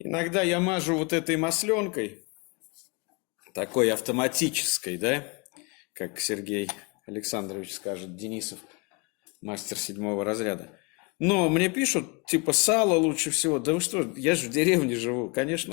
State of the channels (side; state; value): right; quieter; 30.1 dB